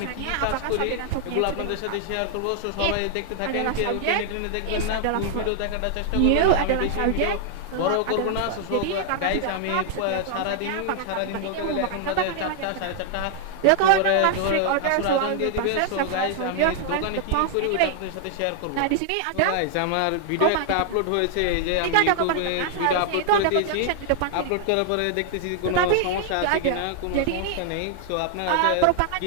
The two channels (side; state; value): both; different; correlation 0.00